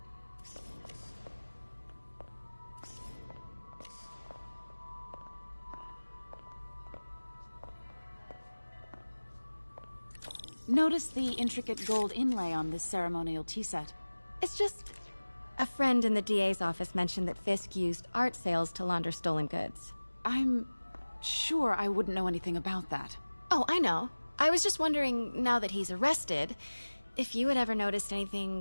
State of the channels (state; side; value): inverted; both; correlation -1.00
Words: Notice the intricate gold inlay on this ceremonial tea set. It's just... a friend in the DA's office mentioned that Fisk used art sales to launder stolen goods. I'm sure I wouldn't know anything about that. Oh, I know. I was just wondering, now that he's arrested, if you had ever noticed